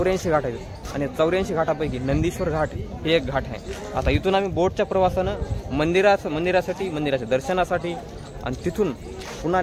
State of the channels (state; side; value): identical; both; correlation 1.00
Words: घाट आहेत. आणि 84 घाटापैकी नंदीश्वर घाट हे एक घाट आहे. आता इथून आम्ही बोटच्या प्रवासानं मंदिरासाठी, मंदिराच्या दर्शनासाठी, आणि तिथून पुन्हा